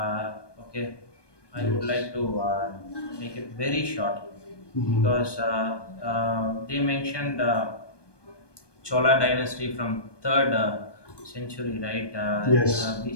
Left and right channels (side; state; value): right; late; 1.2 ms